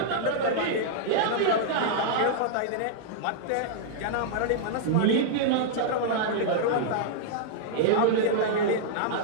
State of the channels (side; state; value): both; different; correlation -0.01